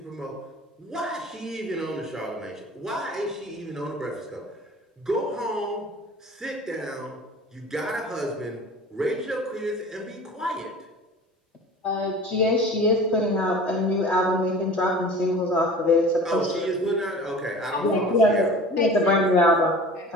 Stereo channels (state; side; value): normal; both; correlation 0.41